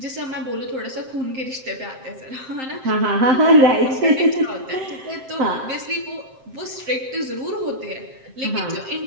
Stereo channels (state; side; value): late; left; 7.7 ms